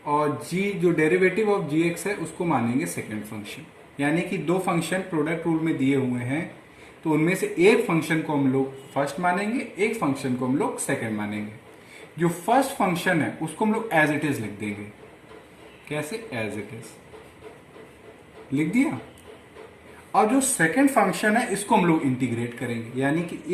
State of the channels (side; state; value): both; identical; correlation 1.00